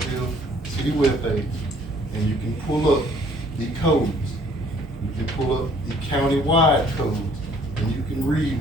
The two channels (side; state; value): both; normal; correlation 0.59